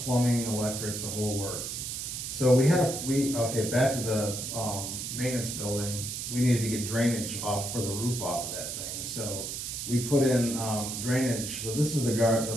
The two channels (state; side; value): noise; right; hiss, 5 dB below the sound